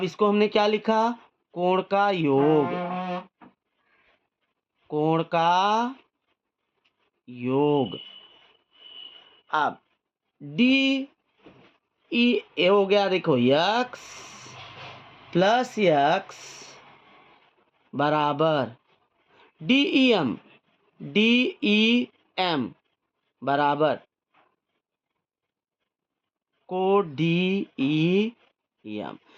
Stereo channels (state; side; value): identical; both; correlation 1.00